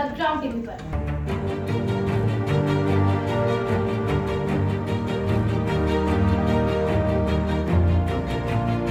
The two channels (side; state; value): both; identical; correlation 1.00